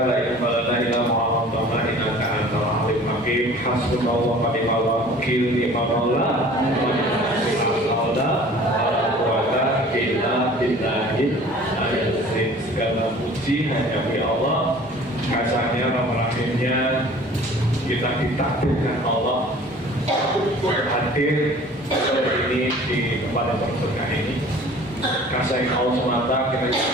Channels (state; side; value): normal; both; correlation 0.47